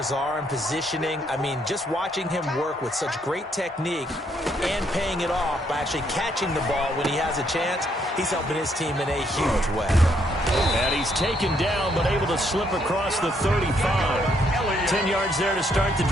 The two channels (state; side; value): normal; both; correlation 0.72